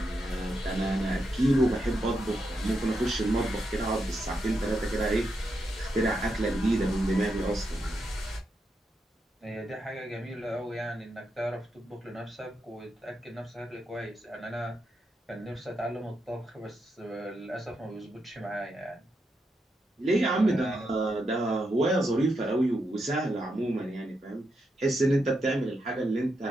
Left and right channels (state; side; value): normal; both; correlation 0.84